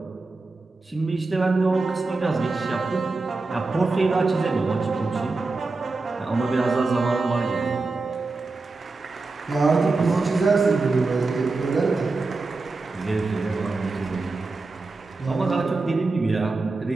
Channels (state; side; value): quieter; left; 3.7 dB